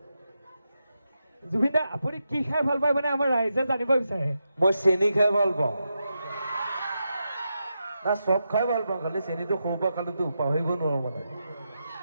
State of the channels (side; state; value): both; inverted; correlation -0.87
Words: জুবিনা আপুনি কি খাই ভাল পায় মানে আমাৰ ৰাইজে জানিব বিচাৰে মই চেনি খাই ভাল পাওঁ না চব খাই ভাল পাওঁ খালি চেনিটো সৰুৰ পৰা খালেতো পাহৰিব নোৱাৰো মানে